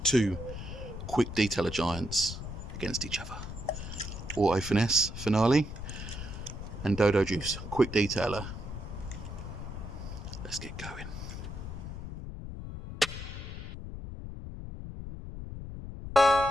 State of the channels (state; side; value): noise; left; rumble, 8 dB below the sound